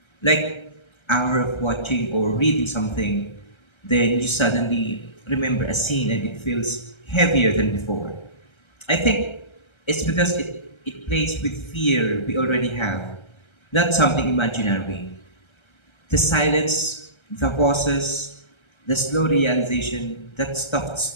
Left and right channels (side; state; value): right; late; 1.3 ms